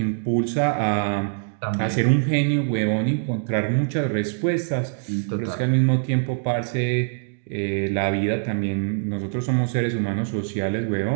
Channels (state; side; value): silent; left; digital silence